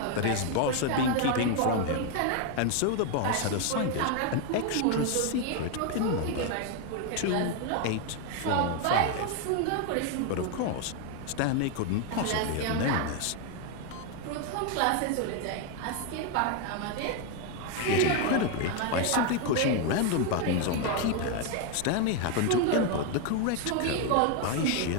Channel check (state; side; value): different; both; correlation 0.01